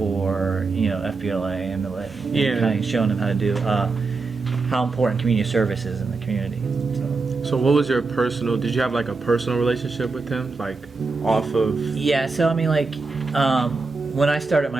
FBLA and kind of showing them how to do how important community service is in the community. So what was your personal? Did you have like a personal relationship with him, like off of? Yeah. So I mean, like when I started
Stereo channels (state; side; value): quieter; left; 4.0 dB